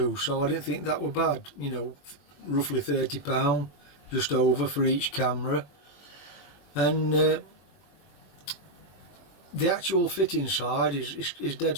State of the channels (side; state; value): right; late; 21 ms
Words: so I didn't think that were bad, you know, roughly £30 just over for each camera. And the actual fitting side is dead